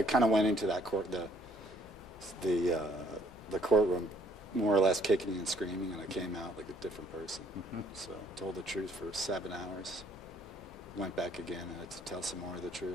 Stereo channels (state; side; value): normal; both; correlation 0.64